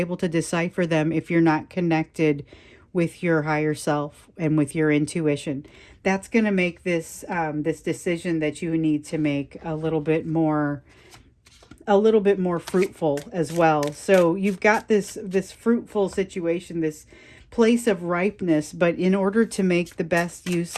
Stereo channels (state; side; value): identical; both; correlation 1.00